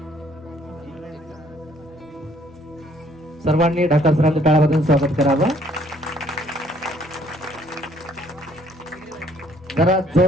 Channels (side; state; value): both; normal; correlation 0.63